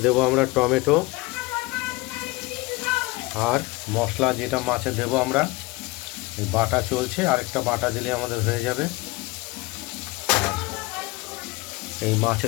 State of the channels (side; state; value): right; quieter; 22.6 dB